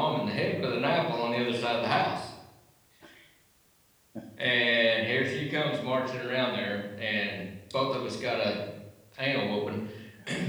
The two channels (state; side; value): identical; both; correlation 1.00